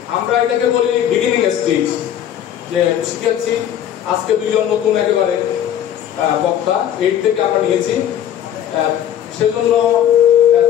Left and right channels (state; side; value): quieter; right; 10.3 dB